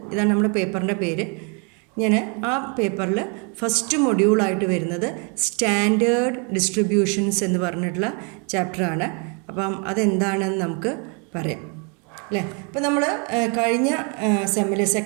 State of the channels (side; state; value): left; quieter; 35.1 dB